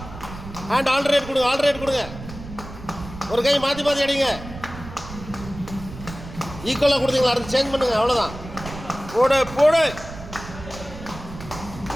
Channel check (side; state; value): right; noise; rumble, 13 dB below the sound